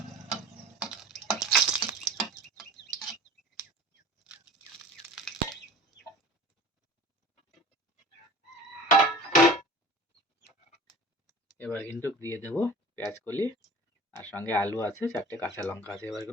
এবার কিন্তু দিয়ে দেবো পেঁয়াজ কলি আর সঙ্গে আলু আছে, চারটে কাঁচা লঙ্কা আছে। এবার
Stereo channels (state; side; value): normal; both; correlation 0.41